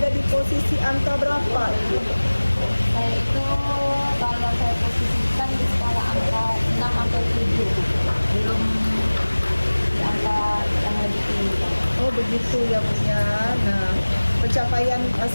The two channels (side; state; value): both; inverted; correlation -1.00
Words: di posisi angka berapa Ibu? Saya itu kalau saya posisikan di skala angka 6 atau 7, belum di angka yang lebih tinggi. Oh begitu ya Bu ya. Nah, pencapaian